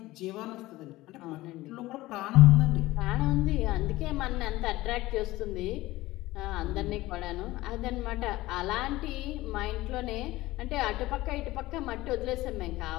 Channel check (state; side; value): quieter; right; 18.1 dB